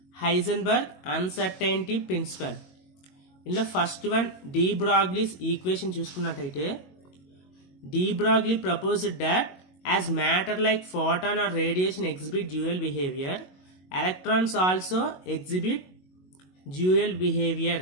హైజెన్బర్గ్ అన్సర్టైనిటీ ప్రిన్సిపల్. ఇందులో first one de Broglie's equation చూసుకున్నట్టయితే, de Broglie proposed that as matter like photon or radiation exhibit dual behaviour, electrons also exhibit dual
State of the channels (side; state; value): right; late; 22 ms